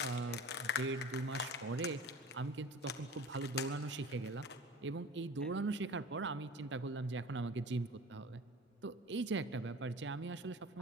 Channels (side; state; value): both; normal; correlation 0.40